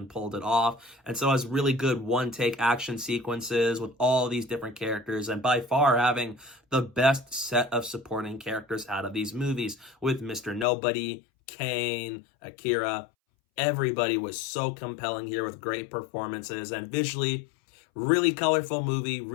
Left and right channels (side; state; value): right; drops out; at 10.7 s